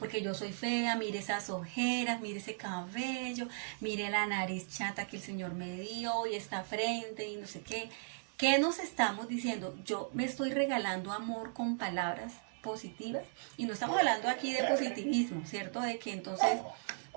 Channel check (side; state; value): left; silent; digital silence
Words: yo soy fea, mire esas ojeras, mire ese cabello, mire la nariz chata que el Señor me dio y esta frente y no sé qué. ¿Qué nos estamos diciendo? Yo me estoy regalando amor con palabras positivas, y no estamos hablando aquí de positivismo, ¿cierto? De que entonces